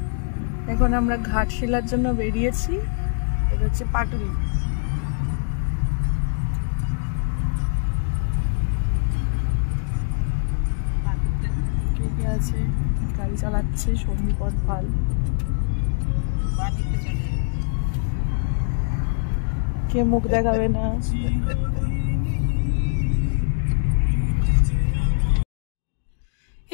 এখন আমরা ঘাটশিলার জন্য বেরিয়েছি। এটা হচ্ছে পাটুলি। কে কে আছে? গাড়ি চালাচ্ছে সন্দীপন পাল। কে মুখ দেখাবে না?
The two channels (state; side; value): silent; right; digital silence